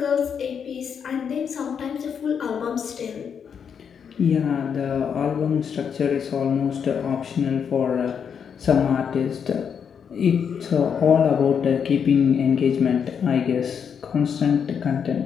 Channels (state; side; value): quieter; right; 7.2 dB